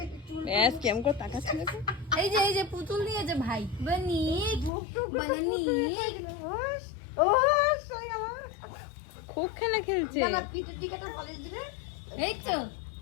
ব্যাস কেমন করে তাকাচ্ছে দেখো। এই যে পুতুল নিয়েছে ভাই। বানি বানানি খুব খেলা খেলছে। এই তো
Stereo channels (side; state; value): right; drops out; at 4.7 s